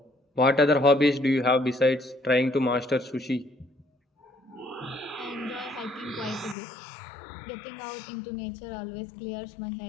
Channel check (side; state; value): right; drops out; at 6.6 s